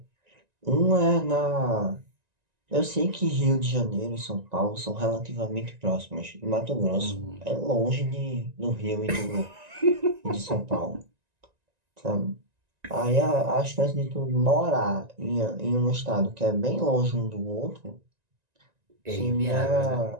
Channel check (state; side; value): late; left; 1.9 ms